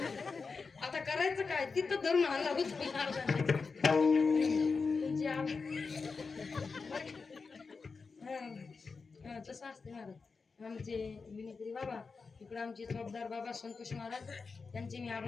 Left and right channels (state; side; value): quieter; right; 4.7 dB